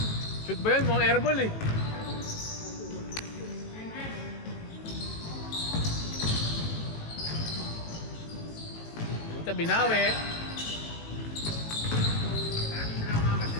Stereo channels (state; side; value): late; right; 18 ms